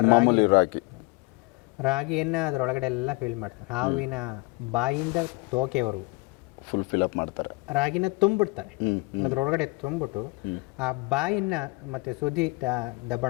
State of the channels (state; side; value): quieter; right; 25.0 dB